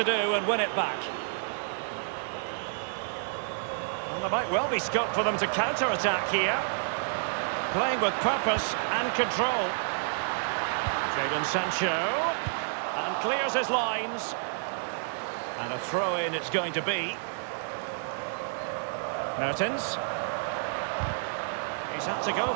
do and win it back. Well, there might well be scope for them to counter-attack here. Playing with purpose and control. Jadon Sancho. And clears his lines. And a throw-in it's going to be. Mertens. He's had to go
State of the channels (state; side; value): silent; left; digital silence